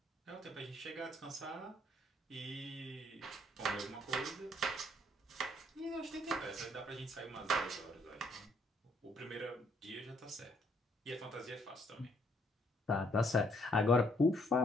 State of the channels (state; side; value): normal; both; correlation 0.68